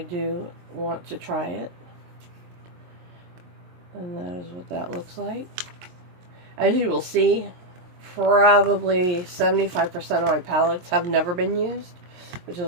want to try it. And that is what that looks like. As you will see, probably 75% of my palettes have never been used, which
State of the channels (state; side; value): late; left; 23 ms